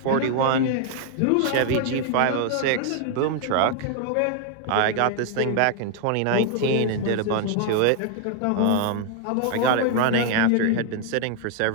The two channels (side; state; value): both; different; correlation 0.00